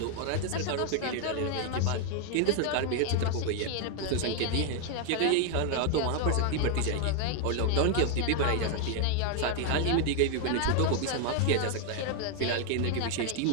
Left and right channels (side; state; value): both; different; correlation 0.00